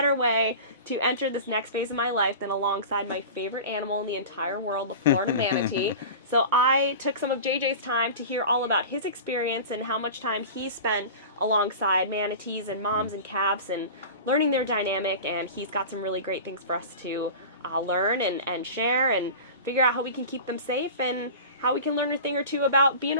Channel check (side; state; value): both; inverted; correlation -0.34